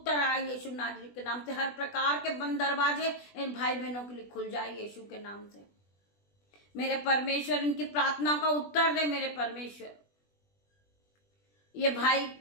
आए यीशु नाजरी के नाम से। हर प्रकार के बंद दरवाजे इन भाई बहनों के लिए खुल जाए यीशु के नाम से। मेरे परमेश्वर इनकी प्रार्थना का उत्तर दे मेरे परमेश्वर। ये भाई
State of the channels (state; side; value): late; right; 20 ms